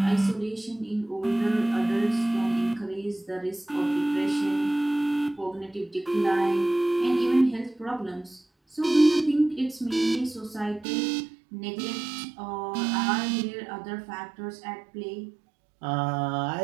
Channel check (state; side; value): drops out; left; at 10.9 s